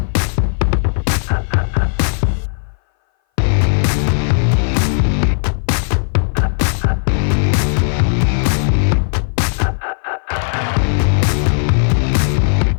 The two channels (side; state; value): right; silent; 60 dB below the other